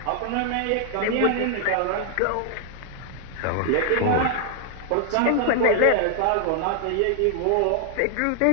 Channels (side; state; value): both; different; correlation 0.00